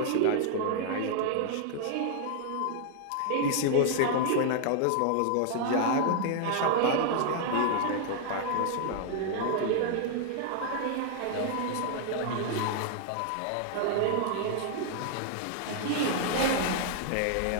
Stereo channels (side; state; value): both; different; correlation 0.00